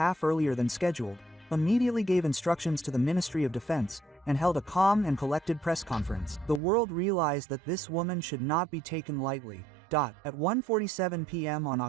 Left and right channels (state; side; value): drops out; left; at 6.6 s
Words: half earlier than scheduled, immediately gave instructions to the Ministry of Defense, and held a calm and collected press conference. The world realized that this woman should not be taken lightly. At 1:47 p.m. on